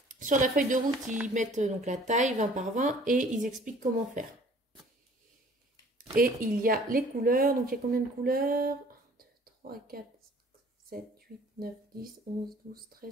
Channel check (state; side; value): normal; both; correlation 0.53